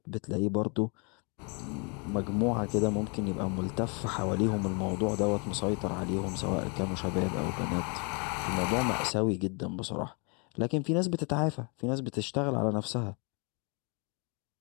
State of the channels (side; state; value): right; quieter; 34.6 dB